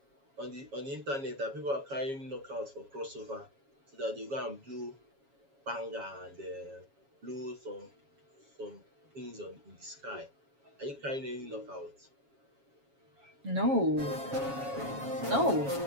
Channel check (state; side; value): late; left; 7.3 ms